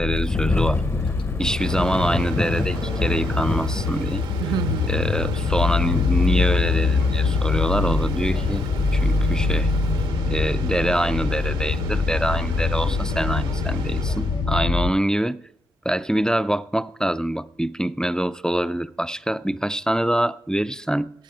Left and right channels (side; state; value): both; normal; correlation 0.79